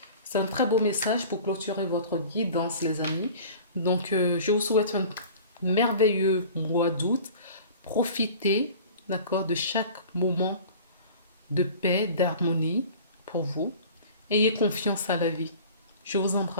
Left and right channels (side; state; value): both; inverted; correlation -0.42